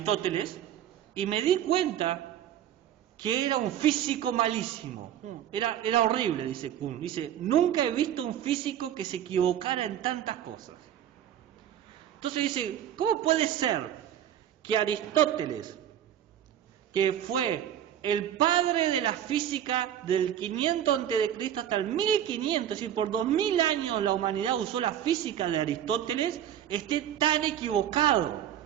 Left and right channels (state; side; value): quieter; left; 10.6 dB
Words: y me di cuenta que era un físico malísimo. Era horrible, dice Kuhn. Dice, nunca he visto un físico que se equivocara en tantas cosas. Entonces dice, ¿cómo puede ser que Aristóteles, que fue el padre de la física del 500 a.C. hasta el 1500, es decir, por 2000 años la humanidad usó la física de Aristóteles, esté tan equivocado,